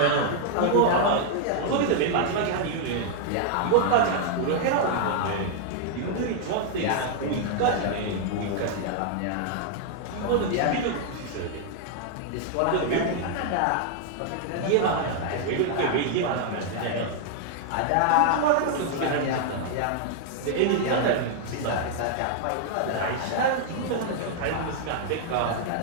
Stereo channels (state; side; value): different; both; correlation 0.00